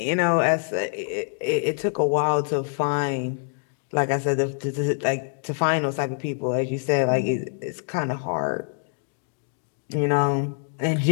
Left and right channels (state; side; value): silent; right; digital silence